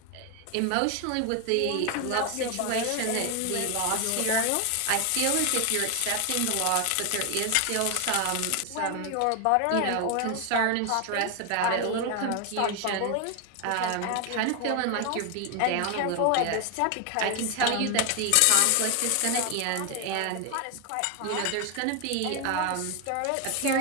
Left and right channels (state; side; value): different; both; correlation 0.01